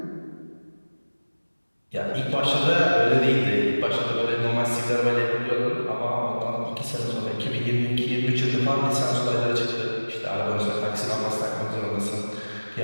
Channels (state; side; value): inverted; both; correlation -1.00